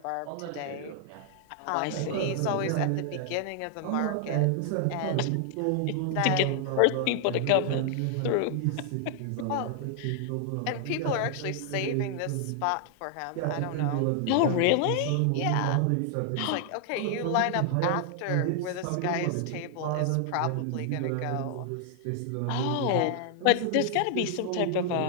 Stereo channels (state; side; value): different; both; correlation 0.00